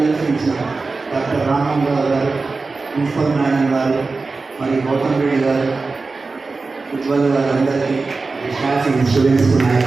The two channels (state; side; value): quieter; left; 3.9 dB